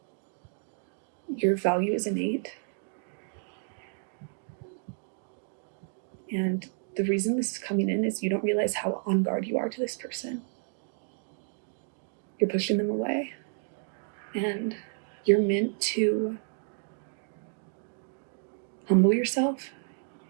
Your value is innate. And the reason this is coming in is you don't realize how on guard you are to this person. You're pushing them away. And you're meant to humble yourself,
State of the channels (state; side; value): silent; left; 57 dB below the other